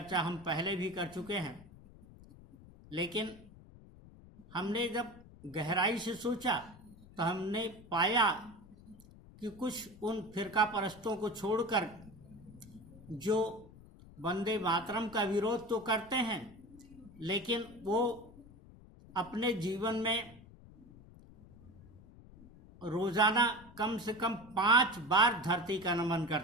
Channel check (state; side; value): noise; left; rumble, 21 dB below the sound